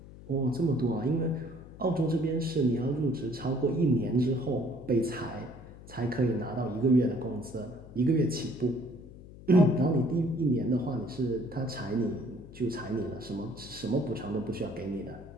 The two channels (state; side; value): noise; left; hum, 17 dB below the sound